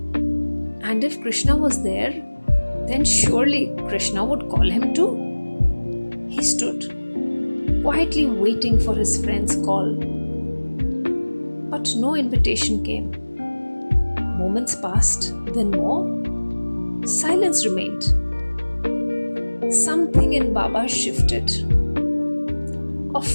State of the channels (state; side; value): inverted; both; correlation -1.00